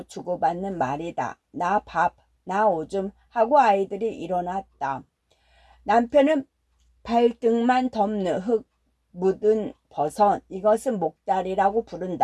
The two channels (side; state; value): both; identical; correlation 1.00